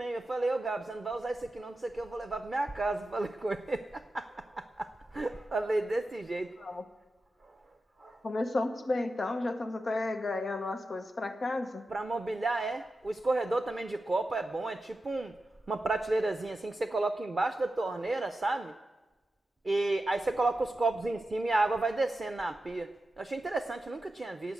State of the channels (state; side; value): normal; both; correlation 0.91